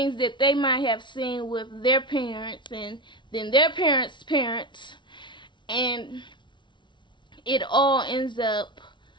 that they might have seen with their parents, and then their parents' parents, and it all ends up,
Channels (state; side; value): late; right; 0.23 ms